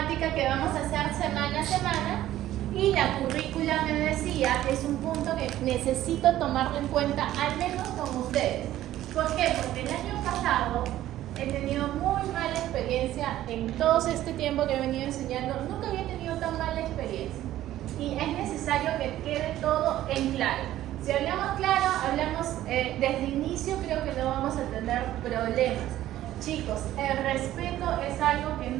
que vamos a hacer semana a semana y la currícula, me decía, es un punto que necesito tomarlo en cuenta, al menos con ustedes. ¿Por qué? Porque el año pasado he tenido muy mala experiencia en todo este tiempo que he venido enseñando. Nunca había tenido tan mala experiencia. Y es necesario que quede todo en claro. Si hablamos claro, hablamos desde el inicio, creo que no vamos a tener problemas. Chicos, el respeto es algo que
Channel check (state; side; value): quieter; left; 13.7 dB